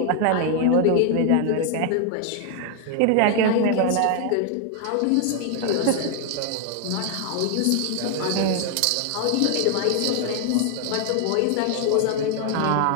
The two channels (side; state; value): both; different; correlation 0.00